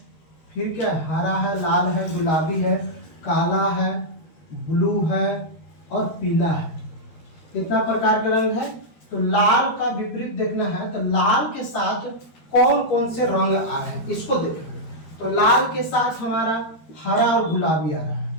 फिर क्या? हरा है, लाल है, गुलाबी है, काला है, ब्लू है और पीला है। कितना प्रकार के रंग है? तो लाल का विपरीत देखना है, तो लाल के साथ कौन कौन से रंग आ रहे हैं इसको देखेंगे। तो लाल के साथ हमारा हरा और गुलाबी आ रहा है,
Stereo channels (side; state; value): right; late; 13 ms